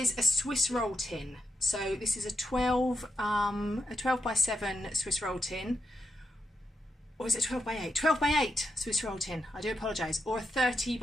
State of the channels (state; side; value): normal; both; correlation 0.84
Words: a Swiss roll tin. So this is a 12 by 7 Swiss roll tin. Or is it 12 by 8? 12 by 8 Swiss roll tin, I do apologise. Or a 30